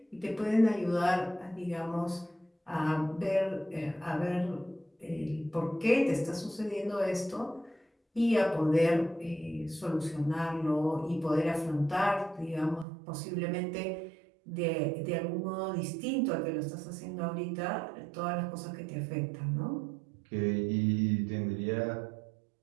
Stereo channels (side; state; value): left; drops out; at 12.9 s